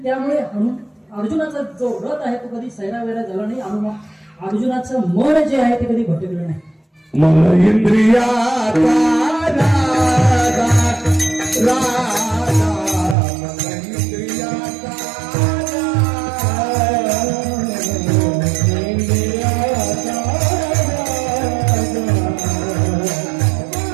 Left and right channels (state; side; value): drops out; left; at 13.2 s